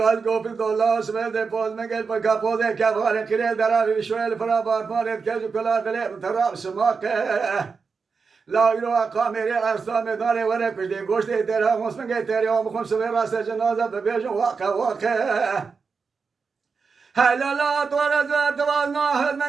قو في الدولار سمعت الفوز مقل بكا فوزي كفاري قليل دراري شوية الفرابات مارد كيجو كلا دليل تراب سماك لا يروى قاميري أرسامي داري ورق بجدي قوشتي تيرها مسمنگي تيري ومخم سوي راس جنازة ببيجو واقع هلا لا تورزا توازنا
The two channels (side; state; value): left; quieter; 5.1 dB